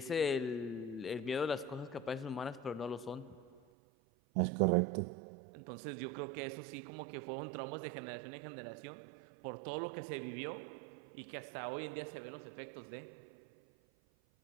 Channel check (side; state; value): left; drops out; at 3.6 s